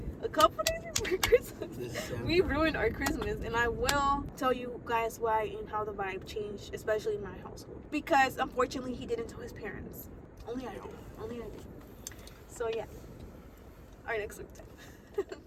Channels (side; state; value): both; identical; correlation 1.00